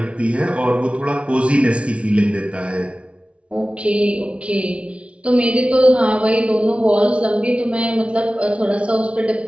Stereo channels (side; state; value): left; late; 0.061 ms